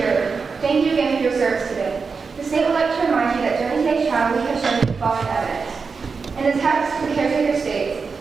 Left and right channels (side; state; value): left; quieter; 5.0 dB